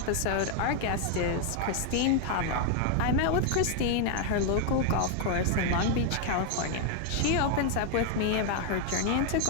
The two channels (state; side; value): different; both; correlation 0.00